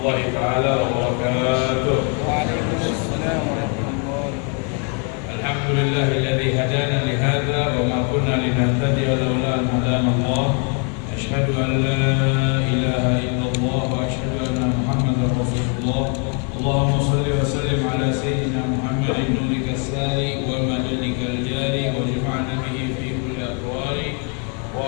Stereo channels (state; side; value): quieter; right; 38.6 dB